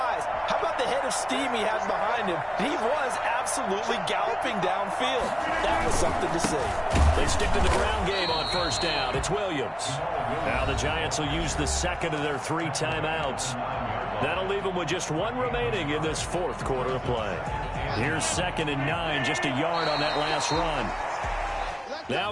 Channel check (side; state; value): both; identical; correlation 1.00